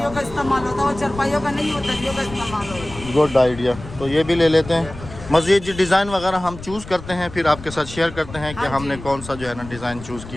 का इस्तेमाल होता है। वो चरपाइयों का नहीं होता, दरियों का इस्तेमाल होता है। गुड आइडिया, तो ये भी ले लेते हैं। मज़ीद जी डिज़ाइन वगैरह हम चूज़ करते हैं, फिर आपके साथ शेयर करते हैं कि हाँ हमने जी। कौन सा जो है ना डिज़ाइन चूज़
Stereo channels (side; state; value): left; noise; rumble, 14 dB below the sound